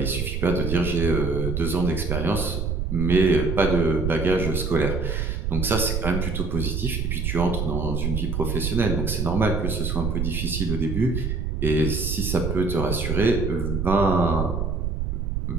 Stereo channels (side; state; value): right; noise; rumble, 1 dB below the sound